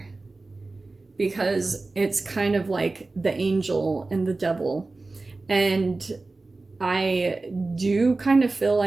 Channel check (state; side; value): quieter; left; 3.4 dB